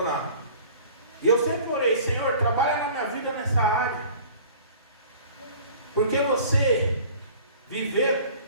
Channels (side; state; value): both; inverted; correlation -0.46